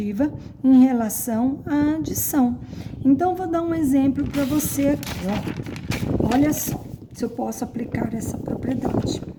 em relação à adição. Então, vou dar um exemplo para você aqui, ó. Olha só, se eu posso aplicar essa propriedade.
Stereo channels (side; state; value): both; identical; correlation 1.00